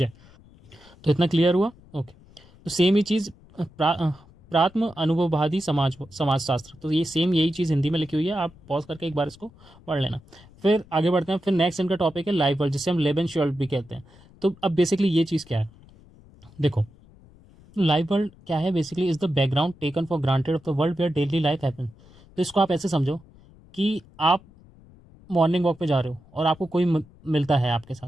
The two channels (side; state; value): left; noise; rumble, 25 dB below the sound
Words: है। तो इतना क्लियर हुआ, ओके। तो सेम ही चीज़ प्रात्म अनुभववादी समाजशास्त्र, तो ये सेम यही चीज़ हिंदी में लिखी हुई है, आप पॉज करके एक बार इसको पढ़ लेना। फिर आगे बढ़ते हैं। फिर नेक्स्ट इनका टॉपिक है लाइफ वर्ल्ड, जिसे हम लेबन श्योल्ड भी कहते हैं। तो अब बेसिकली ये चीज़ क्या है, देखो, लाइव वर्ल्ड क्या है, basically is the background taken for granted of the world where daily life happen. तो इसको आप ऐसे समझो कि आप मॉर्निंग वॉक पे जा रहे हो और आपको कोई मिलता है आपके